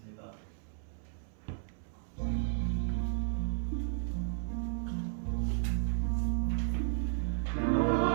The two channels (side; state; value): left; silent; 55 dB below the other